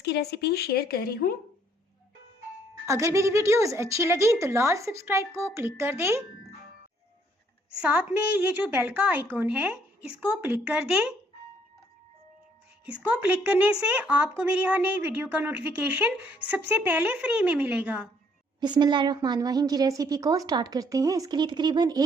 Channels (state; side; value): normal; both; correlation 0.66